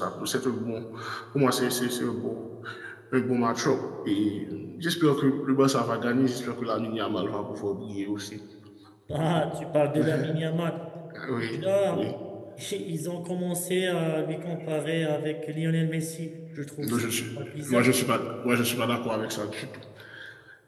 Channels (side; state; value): both; identical; correlation 1.00